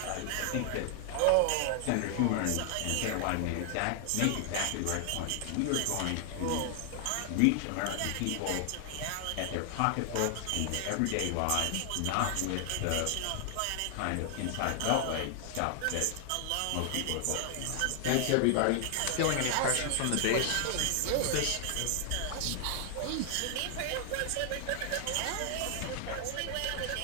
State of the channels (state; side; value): different; both; correlation 0.00